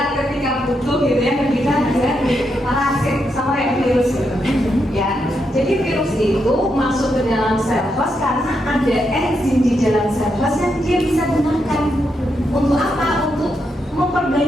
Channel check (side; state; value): both; normal; correlation 0.82